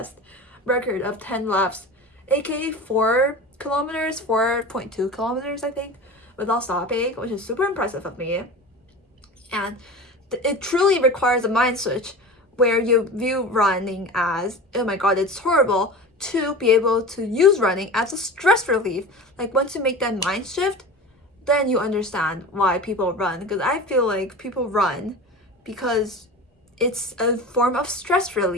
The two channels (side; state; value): both; normal; correlation 0.33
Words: record of 10 laps, aka 4 kilometers, 4.2 kilometers, I think, without stopping, which is super impressive of me. And it truly requires a mind switch where you view running as, oh my god, it's horrible, to be able to use running as a stress relief. Like, once you make that mind shift, then you understand why people run. Because I feel like people run because it's a form of stress